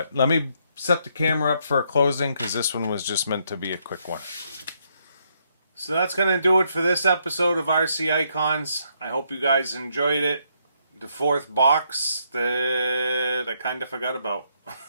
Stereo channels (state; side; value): inverted; both; correlation -0.74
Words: let me set the camera up for a closing, because this one was just meant to be a quick one. So that's going to do it for this episode of RC Icons. I hope you guys enjoyed it. The 4th box that I kind of forgot about.